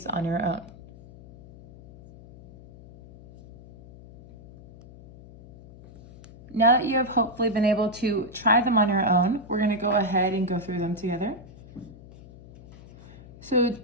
on your own. Now that you have hopefully been able to try them on your own, we're going to go ahead and go through them together. So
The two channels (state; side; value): noise; left; hum, 20 dB below the sound